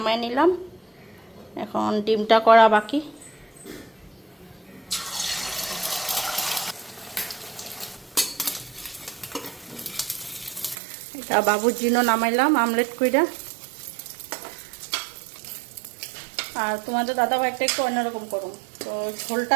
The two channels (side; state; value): left; drops out; at 10.8 s